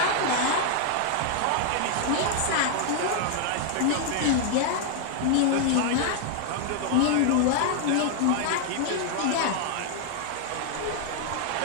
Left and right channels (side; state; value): both; different; correlation 0.00